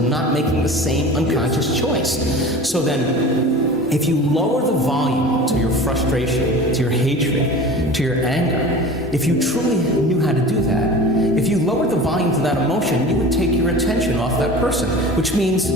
not making the same unconscious choice. So then, if you lower the volume to your frustration, to your hatred, to your anger, if you truly knew how to do that, if you lowered the volume to that emotion, you would take your attention off that person, which means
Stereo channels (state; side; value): normal; both; correlation 0.37